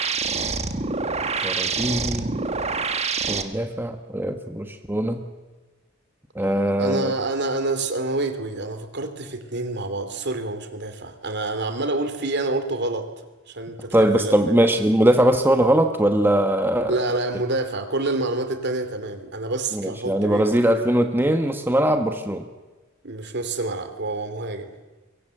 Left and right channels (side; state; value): both; normal; correlation 0.56